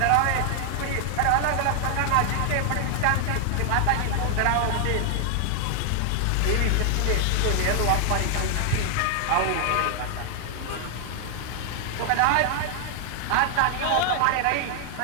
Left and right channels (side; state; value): both; different; correlation 0.00